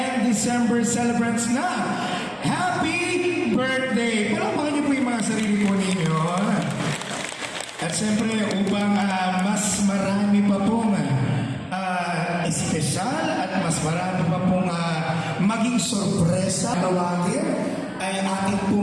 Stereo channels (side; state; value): both; identical; correlation 1.00